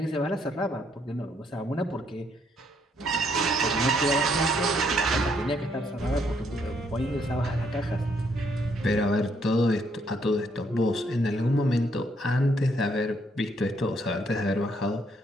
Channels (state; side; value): normal; both; correlation 0.71